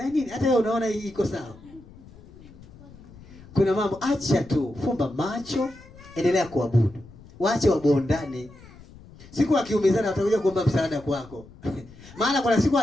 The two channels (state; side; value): noise; left; rumble, 21 dB below the sound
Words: nini? Hata wewe unaona hii iko sawa. Kuna mambo acha tu, fumba macho, endelea kuabudu. Waache wabondane. Siku akiumizana watakuja kuomba msaada kwako. Maana kuna siku